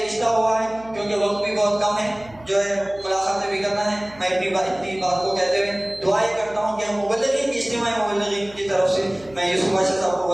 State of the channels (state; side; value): noise; right; hum, 23 dB below the sound